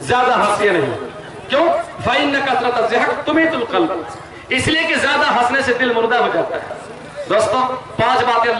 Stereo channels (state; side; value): identical; both; correlation 1.00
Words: ज्यादा हंसिए नहीं, क्यों, फ़इन्न कसरत ज़हक तुमीतुल क़ल्ब, इसलिए कि ज्यादा हंसने से दिल मुर्दा हो जाता है। दोस्तों 5 बातें